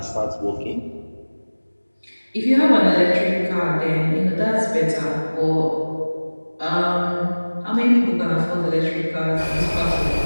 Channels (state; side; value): inverted; both; correlation -1.00